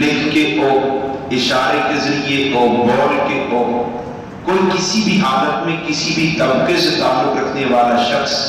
کے ہو، اشارے کے ذریعے ہو، بول کے ہو، کوئی کسی بھی حالت میں کسی بھی طبقے سے تعلق رکھنے والا شخص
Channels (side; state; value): both; identical; correlation 1.00